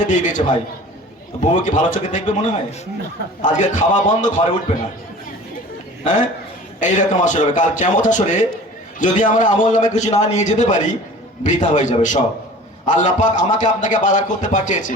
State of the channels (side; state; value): both; normal; correlation 0.42